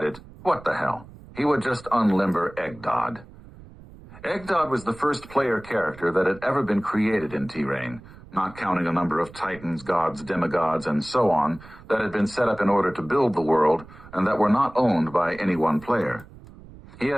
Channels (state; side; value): noise; right; rumble, 19 dB below the sound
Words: what the hell, he would just unlimber Eggdod. Eggdod was the first player character that had ever been created in T-Rain, not counting a number of titans, gods, demigods, and so on that had been set up in order to build the world and that were not owned by any one player. He